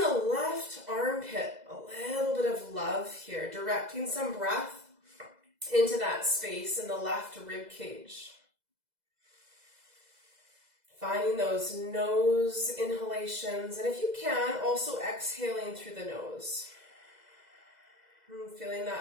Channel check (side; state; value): left; late; 2.0 ms